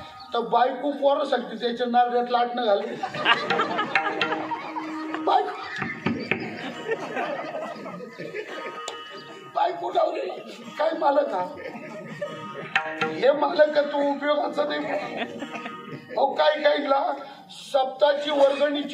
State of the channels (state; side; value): identical; both; correlation 1.00